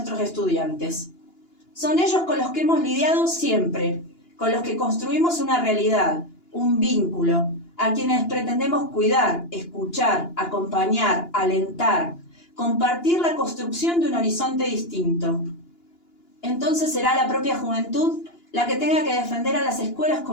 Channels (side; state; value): right; late; 2.9 ms